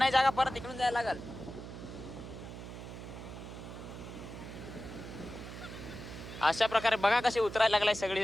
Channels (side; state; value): right; noise; hum, 11 dB below the sound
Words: जागा, परत इकडून जायला लागल. अशा प्रकारे बघा कशी उतरायला लागलाय सगळी